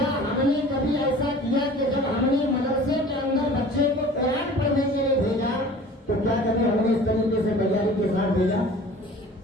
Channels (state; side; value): normal; both; correlation 0.44